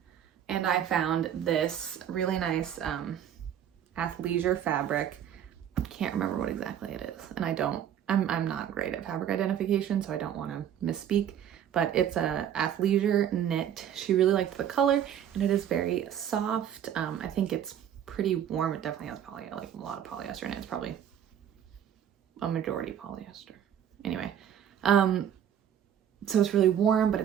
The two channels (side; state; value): left; quieter; 9.7 dB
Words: and I found this really nice athleisure fabric. Can't remember what exactly it is. And I'm not great at fabric identification, so I don't want to misspeak, but it's a athleisure knit. She really liked the color and it is very soft. I think it's pretty warm. It definitely has like a lot of polyester in it. It's probably a majority polyester. Anyway, so it's really warm, but